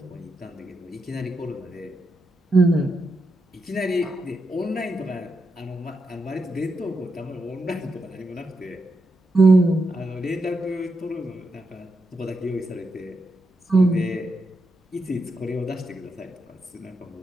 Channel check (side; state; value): both; normal; correlation 0.85